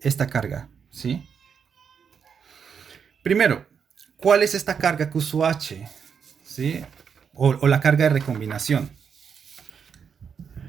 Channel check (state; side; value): quieter; left; 6.8 dB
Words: esta carga, ¿sí? Primero, ¿cuál es esta carga Q sub H? ¿Sí? O la carga de recombinación.